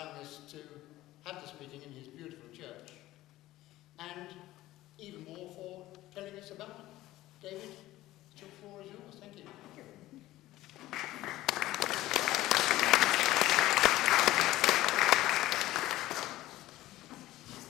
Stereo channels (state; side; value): quieter; right; 16.2 dB